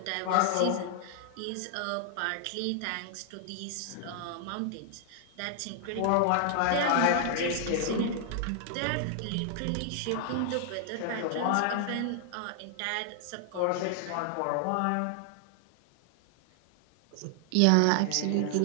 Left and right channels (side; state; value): both; different; correlation 0.00